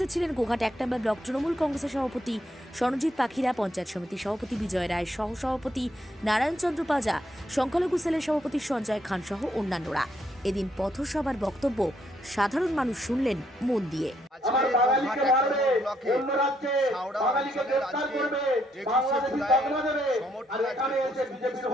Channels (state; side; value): normal; both; correlation 0.74